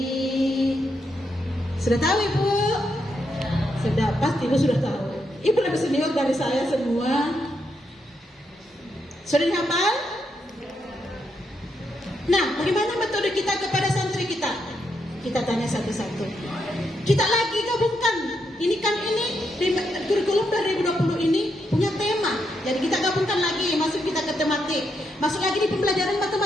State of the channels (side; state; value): both; normal; correlation 0.80